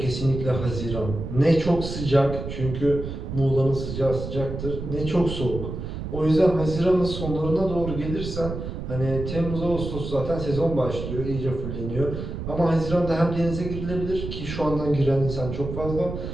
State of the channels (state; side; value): noise; right; rumble, 6 dB below the sound